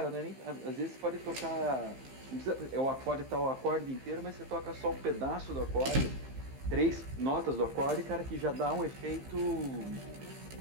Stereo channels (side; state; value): left; late; 15 ms